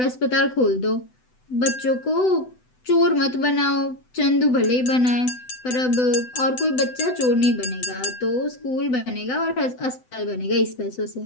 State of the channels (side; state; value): right; late; 7.9 ms